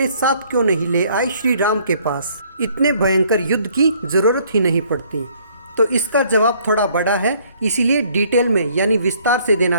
साथ क्यों नहीं ले आए श्री राम के पास? इतने भयंकर युद्ध की जरूरत ही नहीं पड़ती। तो इसका जवाब थोड़ा बड़ा है, इसीलिए डिटेल में यानी विस्तार से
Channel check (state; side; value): inverted; both; correlation -0.62